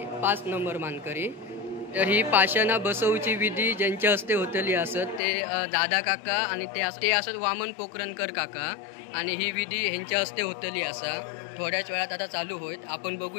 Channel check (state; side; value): drops out; right; at 5.2 s